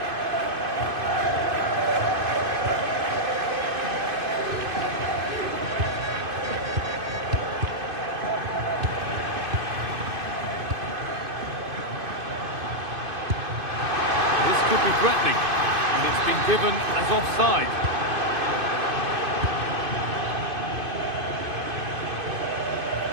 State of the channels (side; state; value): left; late; 2.5 ms